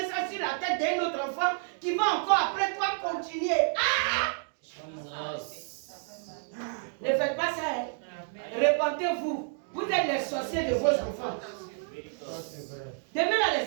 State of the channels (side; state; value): left; silent; 58 dB below the other